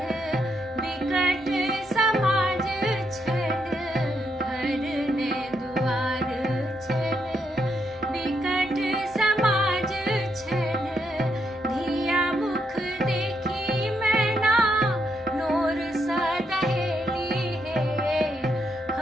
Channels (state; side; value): normal; both; correlation 0.78